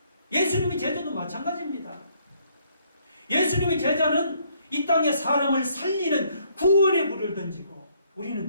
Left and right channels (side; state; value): both; inverted; correlation -0.67